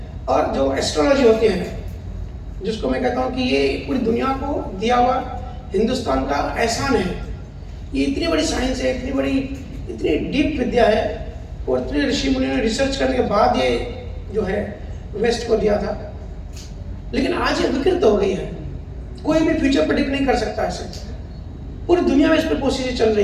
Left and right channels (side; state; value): both; identical; correlation 1.00